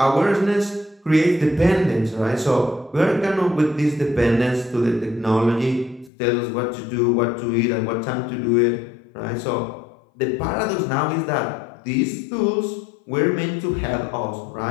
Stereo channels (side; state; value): right; drops out; at 6.1 s